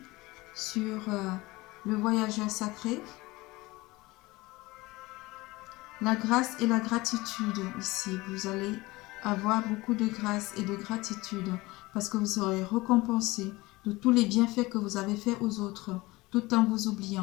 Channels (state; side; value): quieter; right; 21.1 dB